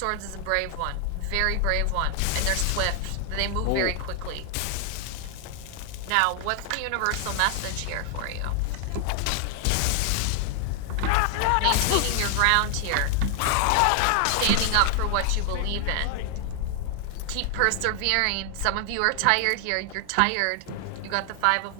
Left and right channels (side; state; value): both; different; correlation 0.00